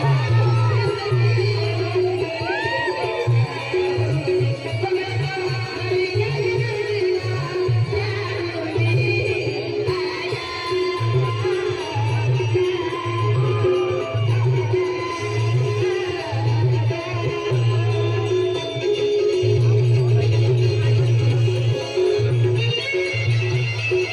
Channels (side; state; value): both; identical; correlation 1.00